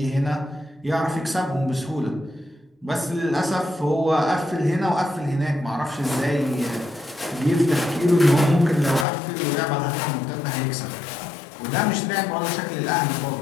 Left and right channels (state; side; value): drops out; right; at 9.1 s